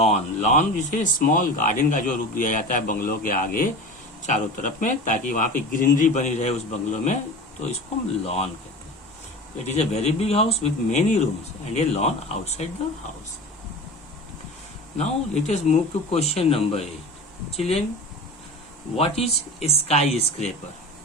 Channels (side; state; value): both; normal; correlation 0.33